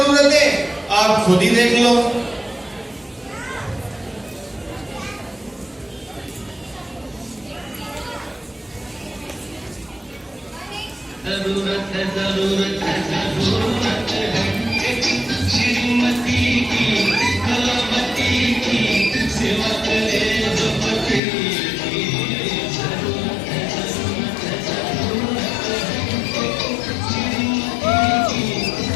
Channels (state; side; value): drops out; right; at 21.2 s